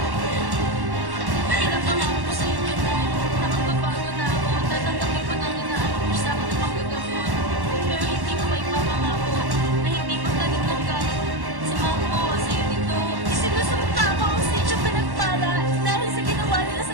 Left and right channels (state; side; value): late; left; 1.1 ms